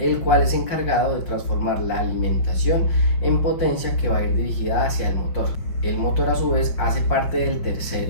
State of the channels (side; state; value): right; late; 5.7 ms